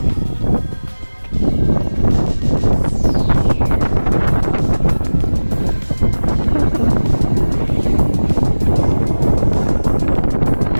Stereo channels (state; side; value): inverted; both; correlation -1.00